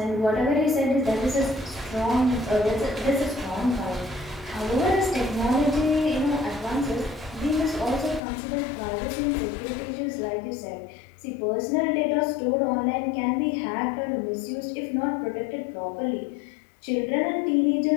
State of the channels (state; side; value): drops out; right; at 8.2 s